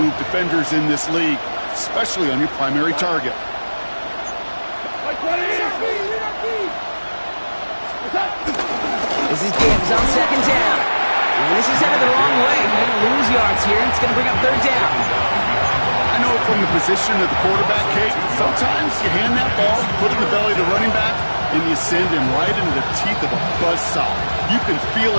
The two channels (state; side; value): inverted; both; correlation -1.00